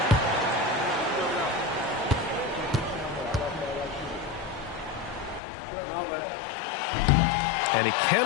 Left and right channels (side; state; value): right; drops out; at 5.4 s